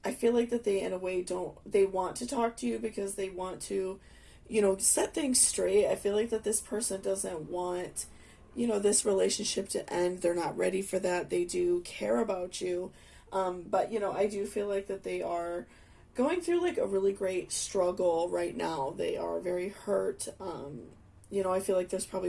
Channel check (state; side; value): identical; both; correlation 1.00